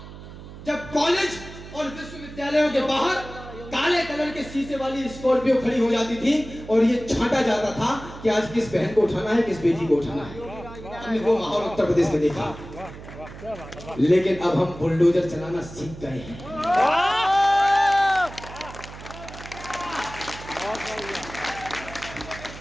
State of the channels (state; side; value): noise; right; hum, 14 dB below the sound